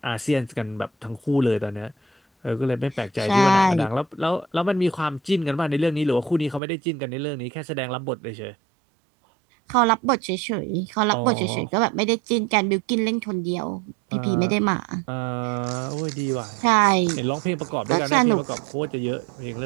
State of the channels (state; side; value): drops out; left; at 6.6 s